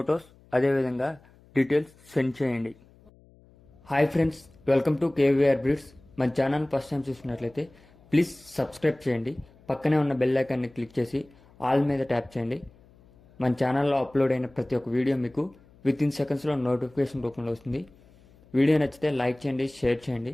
అదేవిధంగా డీటెయిల్స్ సెండ్ చేయండి. Hi friends, welcome to KVR breeds. మన ఛానల్ ఫస్ట్ టైం చూసినట్లయితే ప్లీజ్ సబ్స్క్రైబ్ చేయండి. పక్కనే ఉన్న బెల్ ఐకాన్ని క్లిక్ చేసి ఆల్ మీద ట్యాప్ చేయండి. మన ఛానల్లో అప్లోడ్ అయిన ప్రతి ఒక్క వీడియో మీకు వితిన్ సెకండ్స్లో నోటిఫికేషన్ రూపంలో వస్తుంది. వీడియో నచ్చితే లైక్ చేయండి, షేర్ చేయండి.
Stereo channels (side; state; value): left; noise; hum, 27 dB below the sound